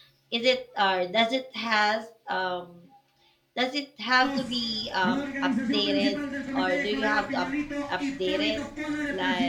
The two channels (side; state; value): both; identical; correlation 1.00